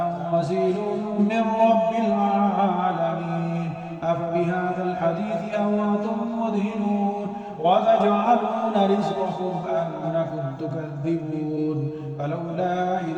من رب العالمين أفبهذا الحديث أنتم مدهنون وتجعلون رزقكم أنكم تكذبون فلولا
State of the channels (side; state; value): both; identical; correlation 1.00